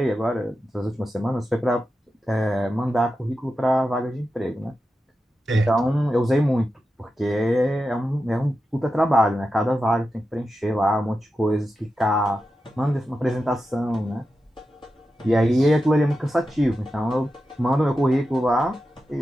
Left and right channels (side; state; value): both; normal; correlation 0.90